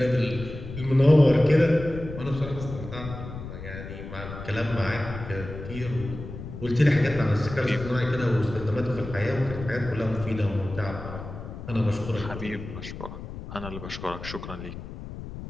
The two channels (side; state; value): left; noise; rumble, 10 dB below the sound